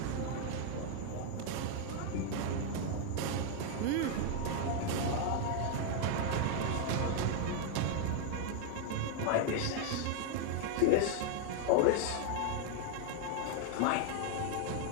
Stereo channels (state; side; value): different; both; correlation 0.00